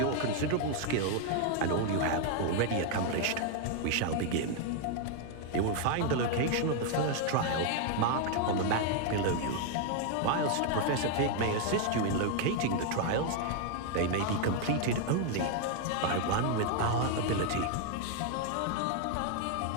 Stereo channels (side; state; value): both; different; correlation 0.00